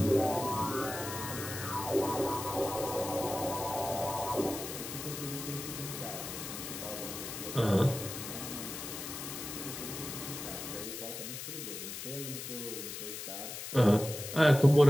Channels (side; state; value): left; noise; hiss, 8 dB below the sound